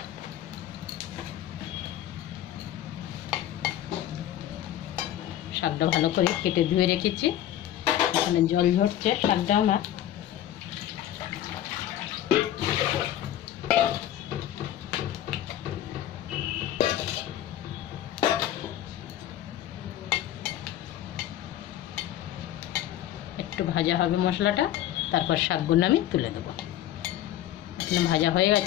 শাকটা ভালো করে কেটে ধুয়ে রেখেছি, এখানে জল ঝরছে। শাকটা আমার একটু ভাজা হবে মশলাটা, তারপর শাকগুলো আমি তুলে দেবো। এখানে ভাজা হয়ে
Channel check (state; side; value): quieter; right; 12.2 dB